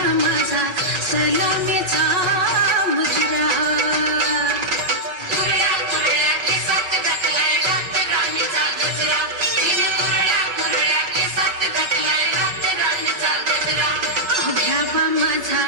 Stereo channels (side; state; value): left; late; 5.3 ms